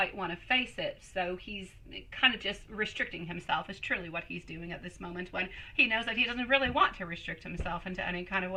want to face it. So he's kind of just restricting himself is truly what he's doing at this moment, when he knows that he doesn't really want to restrict himself into any kind of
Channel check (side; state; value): both; identical; correlation 1.00